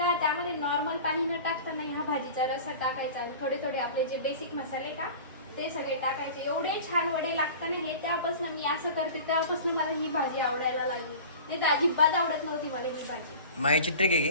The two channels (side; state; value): both; inverted; correlation -0.38